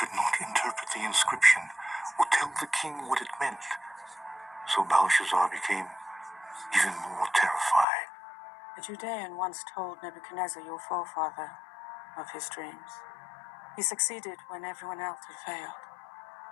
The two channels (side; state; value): right; drops out; at 7.9 s